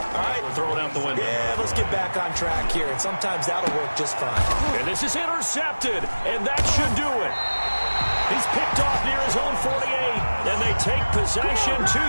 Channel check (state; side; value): inverted; both; correlation -1.00